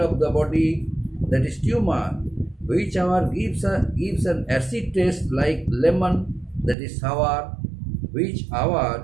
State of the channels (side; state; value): left; drops out; at 6.8 s